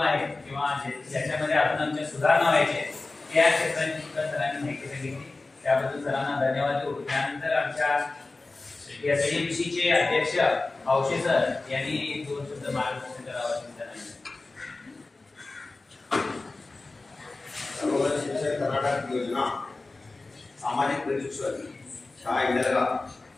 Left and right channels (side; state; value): right; quieter; 3.4 dB